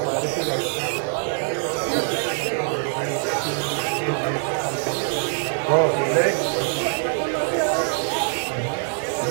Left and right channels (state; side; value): silent; left; 63 dB below the other